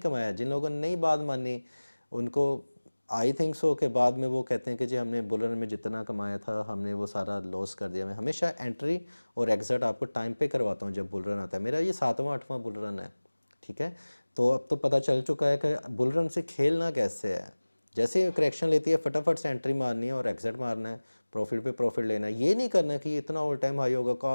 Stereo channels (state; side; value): inverted; both; correlation -1.00